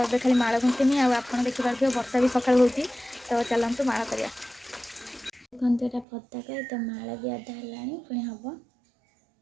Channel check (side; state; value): left; drops out; at 6.1 s